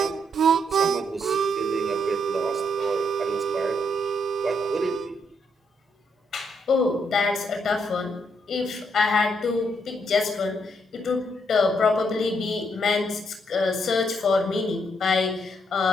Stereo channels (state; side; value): normal; both; correlation 0.75